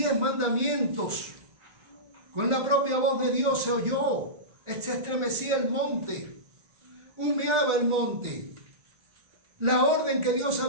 mandamientos, con la propia voz de Dios se oyó, se estremecía el monte, humeaba el monte. La orden que Dios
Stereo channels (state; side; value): late; left; 1.4 ms